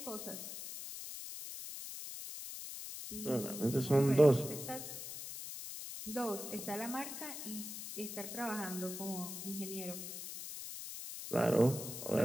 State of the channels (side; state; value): left; noise; hiss, 8 dB below the sound